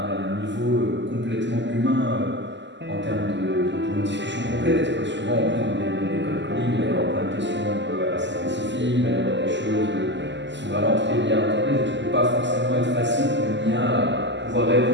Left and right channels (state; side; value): late; left; 0.53 ms